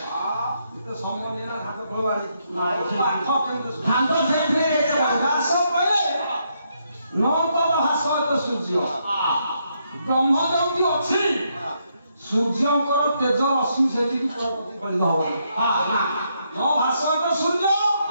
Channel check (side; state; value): both; inverted; correlation -0.77